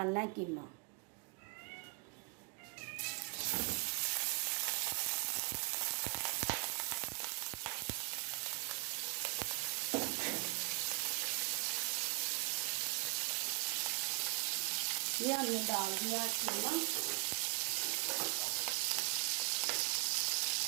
है कीमा। ये हमने डाल दिया कीमा।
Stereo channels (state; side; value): quieter; left; 30.2 dB